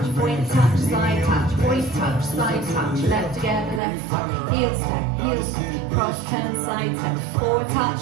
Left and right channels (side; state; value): left; drops out; at 3.8 s